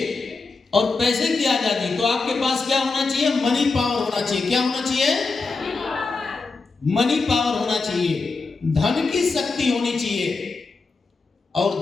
और पैसे की आजादी, तो आपके पास क्या होना चाहिए? मनी पावर होना चाहिए। क्या होना चाहिए? मनी पावर होना चाहिए, धन की शक्ति होनी चाहिए।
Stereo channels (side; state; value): right; quieter; 4.1 dB